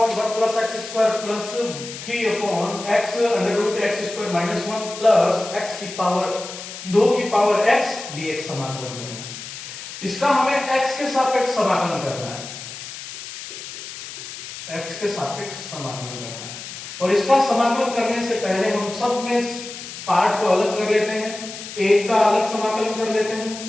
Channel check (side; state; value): left; noise; hiss, 11 dB below the sound